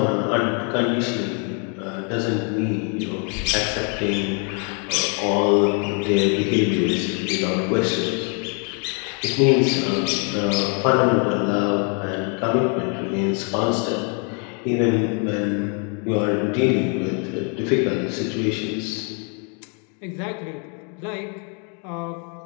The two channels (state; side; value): quieter; right; 38.4 dB